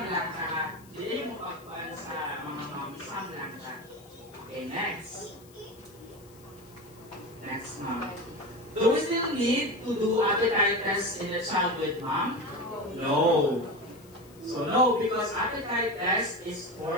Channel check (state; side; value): noise; left; hiss, 26 dB below the sound